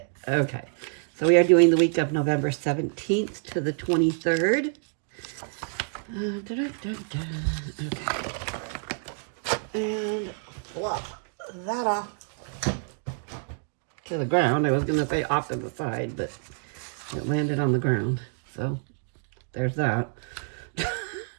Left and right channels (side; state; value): left; silent; 60 dB below the other